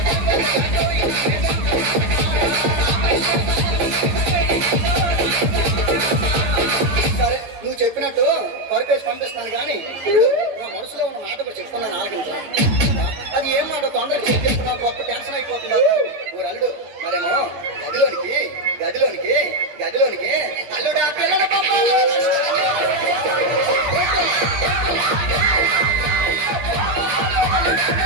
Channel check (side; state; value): left; late; 14 ms